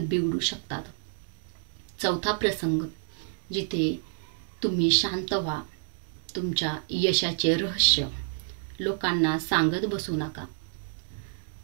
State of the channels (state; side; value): silent; left; digital silence